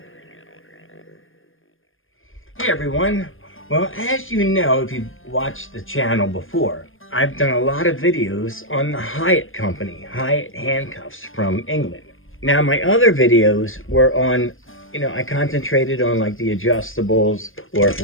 everyone, well, as you know, if you've watched the channel before, I've done a lot of videos on the Hiatt company, Hiatt handcuffs from England. Now my other videos were on, I concentrated on like the adjustables, or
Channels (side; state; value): right; late; 0.59 ms